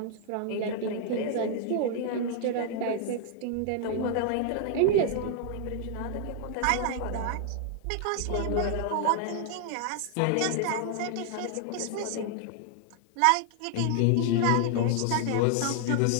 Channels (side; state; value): both; different; correlation 0.00